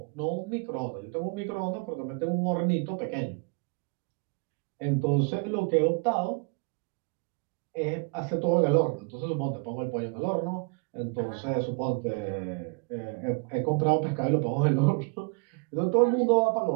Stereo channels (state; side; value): quieter; left; 32.8 dB